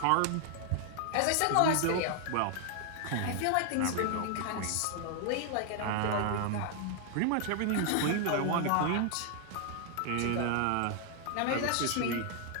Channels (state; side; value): different; both; correlation 0.00